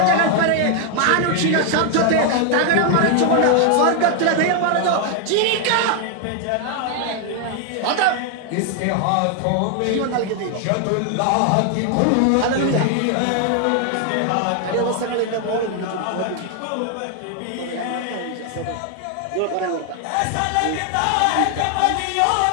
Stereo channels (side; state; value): both; different; correlation 0.00